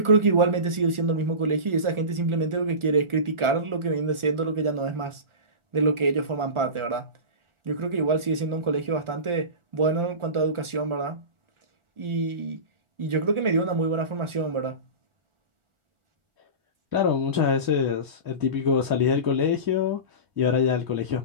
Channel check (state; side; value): late; left; 1.4 ms